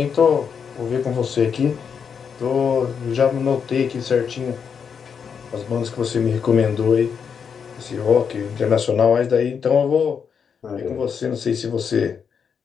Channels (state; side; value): quieter; right; 6.7 dB